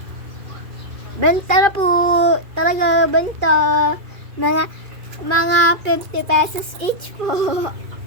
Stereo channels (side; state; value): left; late; 2.4 ms